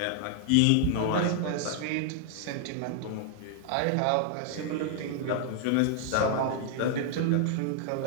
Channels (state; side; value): different; both; correlation 0.00